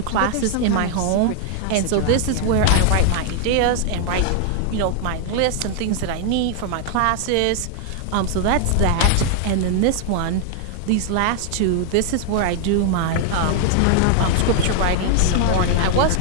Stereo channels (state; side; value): different; both; correlation 0.00